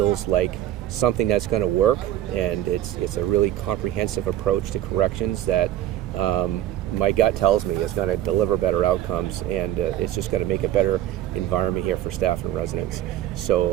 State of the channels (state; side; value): quieter; left; 12.8 dB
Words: like something that's going to work, and it's a really comprehensive approach to corrections that my gut tells me is going to deliver better outcomes, and it's just going to make a better environment here for staff and residents.